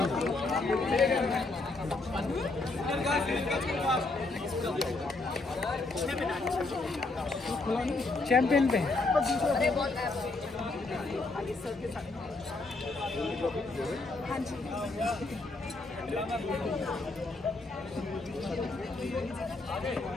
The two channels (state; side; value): quieter; right; 3.3 dB